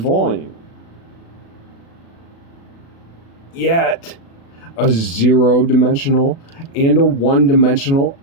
Yet, a zero-dimensional and a one-dimensional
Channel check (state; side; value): late; right; 36 ms